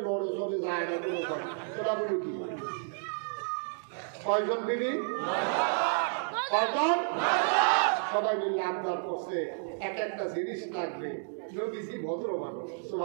লড়ে চলে যায় না, তোরা বলু কি কয়জন বিবি কয়জন সবাই মিলে আবদার করছে এক একটা জিনিস লাগবে নবীজি ভদ্র মানুষ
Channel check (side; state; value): left; silent; digital silence